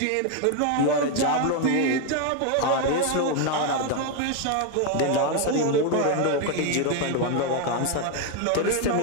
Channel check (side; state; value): both; different; correlation 0.01